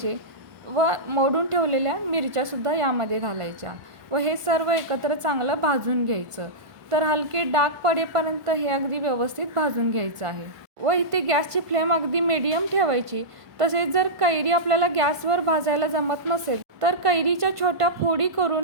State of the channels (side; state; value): left; late; 1.5 ms